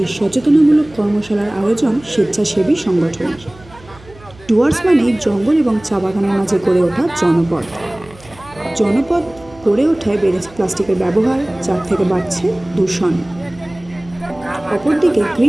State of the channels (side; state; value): right; noise; hum, 23 dB below the sound